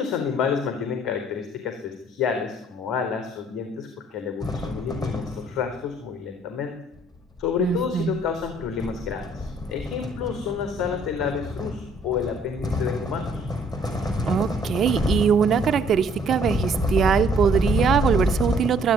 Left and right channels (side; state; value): both; normal; correlation 0.61